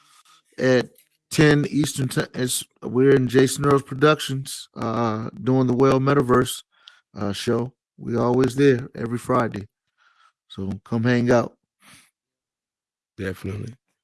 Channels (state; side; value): identical; both; correlation 1.00